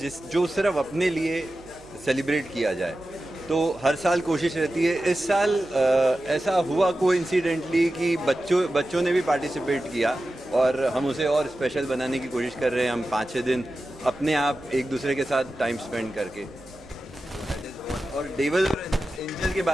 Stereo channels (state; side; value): noise; right; hum, 24 dB below the sound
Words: जो सिर्फ अपने लिए सेलिब्रेट किया जाए। तो हर साल कोशिश रहती है। इस साल ऐसा हुआ कोइंसिडेंटली कि बच्चों ने भी पार्टिसिपेट किया और हम उसे और स्पेशल बनाने की कोशिश कर रहे हैं। हम 5-6 दिन अपने आप एक दूसरे के साथ टाइम स्पेंड करके। और डेविल और एंजल के